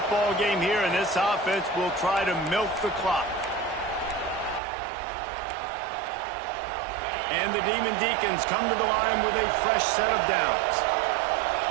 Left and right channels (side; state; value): left; drops out; at 4.6 s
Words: ball game here, and this offense will try to milk the clock. And the Demon Deacons come to the line with a fresh set of downs.